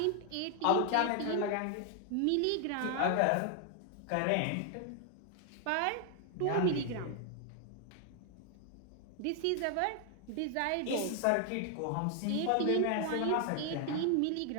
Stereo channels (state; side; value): different; both; correlation 0.00